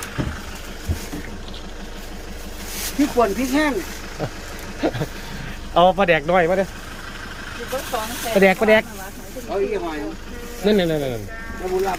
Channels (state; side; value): identical; both; correlation 1.00